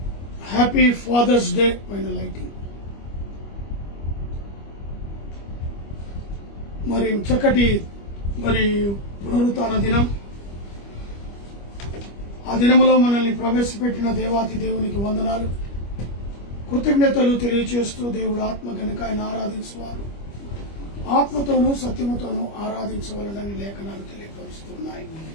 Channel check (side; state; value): right; late; 25 ms